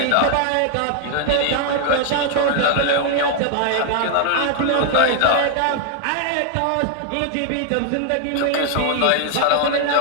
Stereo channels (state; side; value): different; both; correlation 0.00